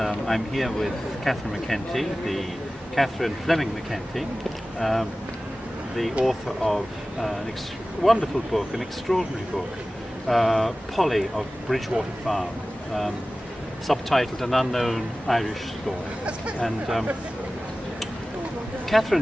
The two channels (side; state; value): both; normal; correlation 0.97